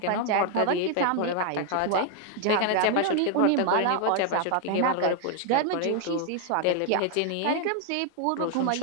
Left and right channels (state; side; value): different; both; correlation 0.00